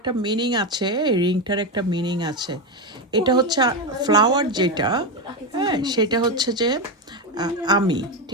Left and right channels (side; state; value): both; normal; correlation 0.12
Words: মিনিং আছে, রিংটার একটা মিনিং আছে। এটা হচ্ছে ফ্লাওয়ার যেটা, হ্যাঁ সেটা হচ্ছে যে আমি,